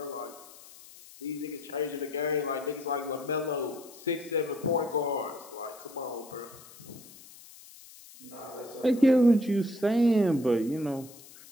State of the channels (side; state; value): left; noise; hiss, 20 dB below the sound